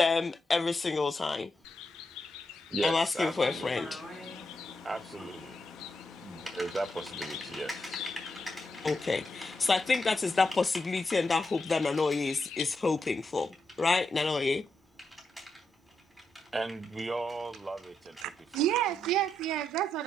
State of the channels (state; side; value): normal; both; correlation 0.83